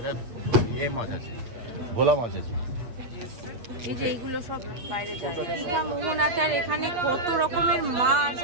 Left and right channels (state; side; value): late; left; 8.3 ms